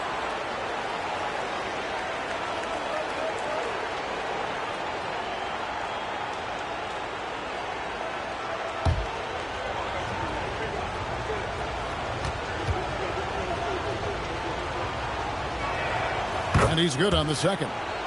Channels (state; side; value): identical; both; correlation 1.00